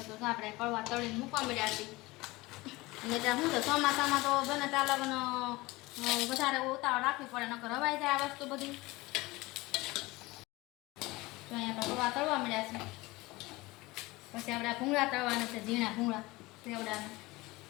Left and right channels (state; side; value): quieter; right; 21.3 dB